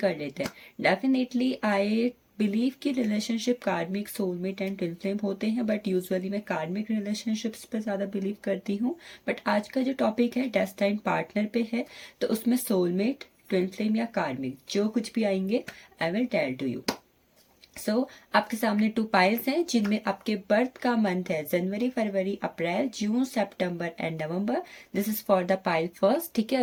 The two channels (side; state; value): both; identical; correlation 1.00